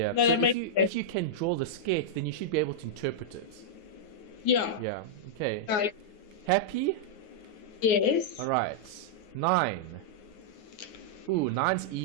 No, so if you can draw the sketch, then you should be able to interpret it. Yeah. Yeah. Okay. Happy? Yes. All right. 9. Ooh, 9's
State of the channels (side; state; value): right; late; 9.5 ms